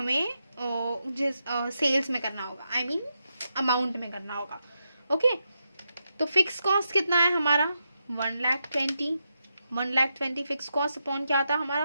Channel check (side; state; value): both; inverted; correlation -0.86